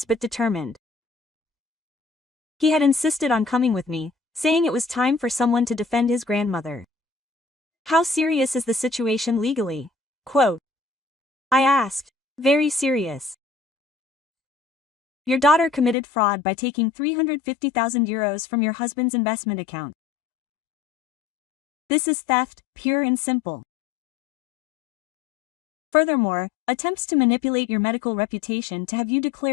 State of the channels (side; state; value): right; drops out; at 16.0 s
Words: but determined. He had insisted on coming with me, saying it was time for someone to defend his grandmother. How serious is the situation legally? Quote. I asked. Very serious. Your daughter committed fraud by taking 350,000 euros from your husband's investment account. This is theft, pure and simple. Furthermore, attempts to manipulate your medical reputation to have you